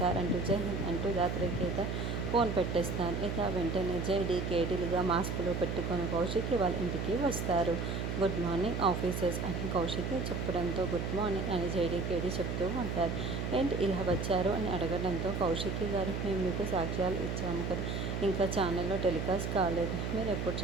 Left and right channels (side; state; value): right; noise; hum, 2 dB below the sound